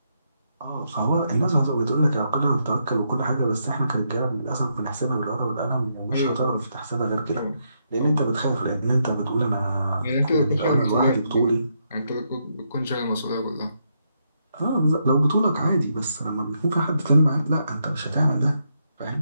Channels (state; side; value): inverted; both; correlation -0.79